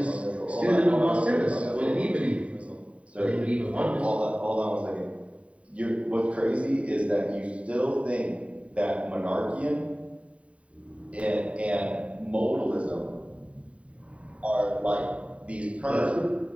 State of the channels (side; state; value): left; late; 0.064 ms